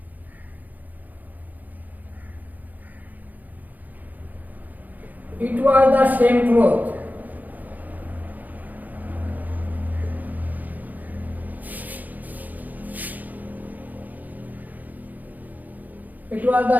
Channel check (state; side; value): late; left; 0.082 ms